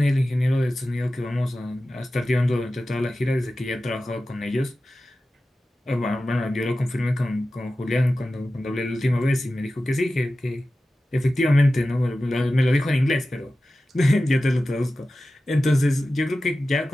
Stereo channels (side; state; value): both; normal; correlation 0.94